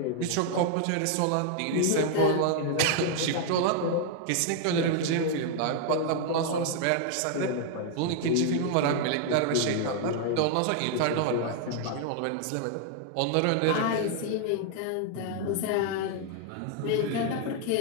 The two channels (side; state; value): both; different; correlation 0.00